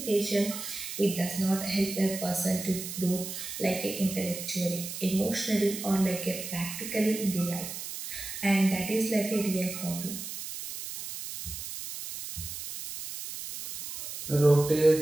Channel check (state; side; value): noise; right; hiss, 8 dB below the sound